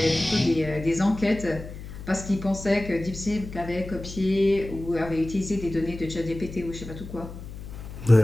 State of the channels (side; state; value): left; noise; hum, 12 dB below the sound